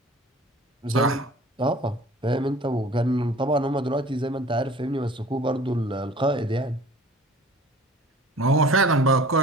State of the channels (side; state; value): both; normal; correlation 0.46